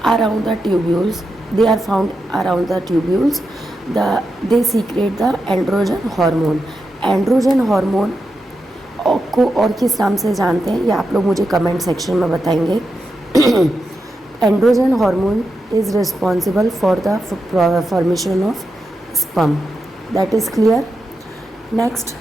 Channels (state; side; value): normal; both; correlation 0.87